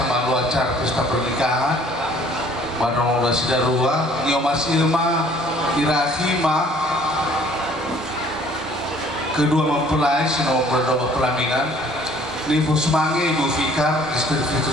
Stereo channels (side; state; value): both; normal; correlation 0.56